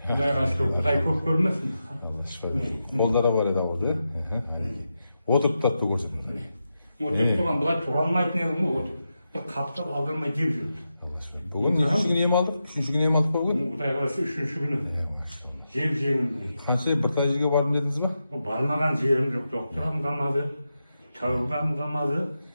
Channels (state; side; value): inverted; both; correlation -0.88